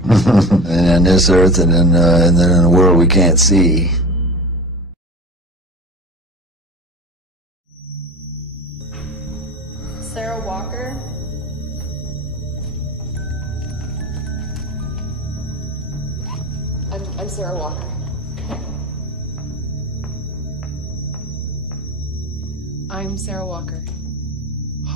And on this earth, and then in a world we can't see. Sarah Walker. I'm Sarah Walker. I'm Sarah Walker.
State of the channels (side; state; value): both; normal; correlation 0.33